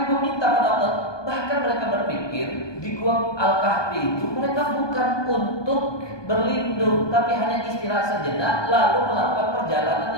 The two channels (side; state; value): right; late; 1.2 ms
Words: meminta pada Allah. Bahkan mereka berpikir di gua Al-Kahfi itu mereka bukan untuk berlindung, tapi hanya istirahat sejenak lalu melakukan perjalanan